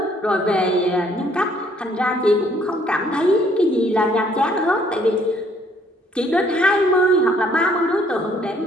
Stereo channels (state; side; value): normal; both; correlation 0.64